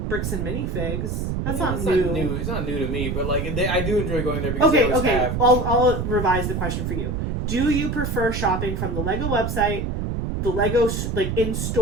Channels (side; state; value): right; noise; rumble, 2 dB below the sound